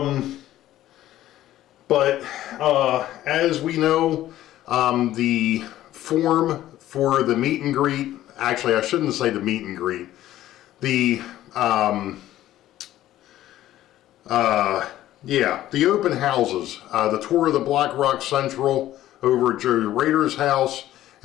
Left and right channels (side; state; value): right; quieter; 13.8 dB